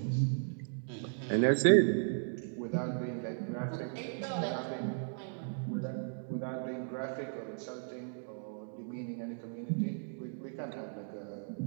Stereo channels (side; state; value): left; silent; digital silence